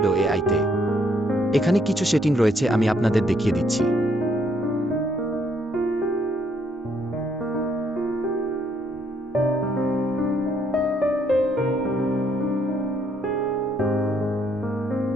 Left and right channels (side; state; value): both; normal; correlation 0.70